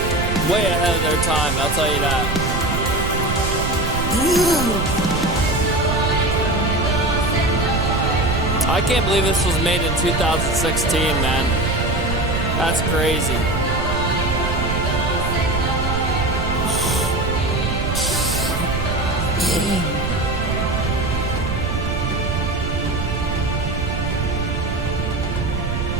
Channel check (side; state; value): right; noise; rumble, 3 dB below the sound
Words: Way ahead of their time, I'll tell you that. I can't believe this was made in 2016, man. That's crazy.